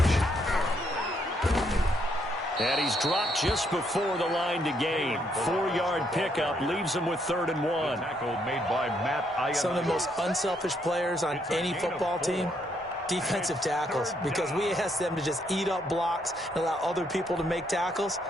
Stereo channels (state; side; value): normal; both; correlation 0.73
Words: And he's dropped just before the line to gain. 4-yard pickup leaves him with 3rd and 1. Tackle made by Matt. Some of the most unselfish players on any football team, defensive tackles, because we ask them to just eat up blocks and allow other people to make tackles.